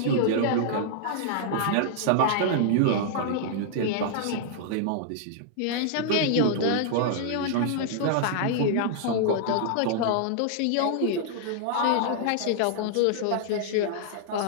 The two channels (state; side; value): different; both; correlation -0.01